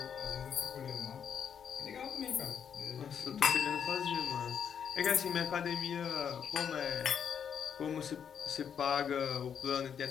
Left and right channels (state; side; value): quieter; right; 7.8 dB